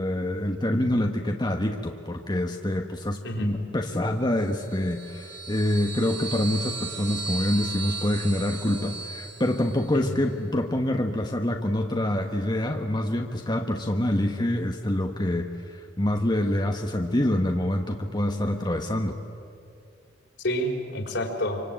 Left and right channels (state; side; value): normal; both; correlation 0.80